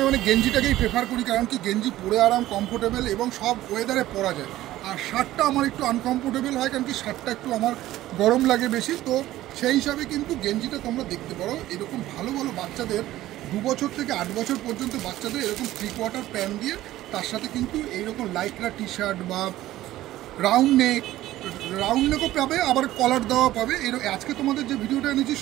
মানে গেঞ্জিটাকেই প্রেফার করি, কারণ কি গেঞ্জি পরে আরাম, কমফোর্টেবল, এবং সব ওয়েদারে পরা যায়। আর শার্টটা আমার একটু আনকমফোর্টেবল হয়, কারণ কি শার্টটা একটু আমার গরম লাগে বেশি। তো সেই হিসাবে কিন্তু গেঞ্জিটা তোমরা দেখতে পারো, এরকম ভালো ভালো বাচ্চাদের 2 বছর থেকে 8 বছর পর্যন্ত বাচ্চাদের এরকম 3/4 প্যান্ট দিয়ে তার সাথে কিন্তু এইরকম লাইকরা টি শার্ট বা রাউন্ড নেকও পাবে, আবার কলার দেওয়া পাবে। আজকে তোমাদের যে ভিডিওটা এনেছি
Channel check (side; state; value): left; quieter; 15.1 dB